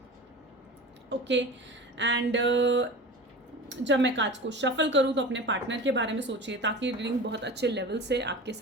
ओके। एंड जब मैं कार्ड्स को शफल करूं तो अपने पार्टनर के बारे में सोचिए ताकि रीडिंग बहुत अच्छे लेवल से आपके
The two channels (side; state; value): both; normal; correlation 0.33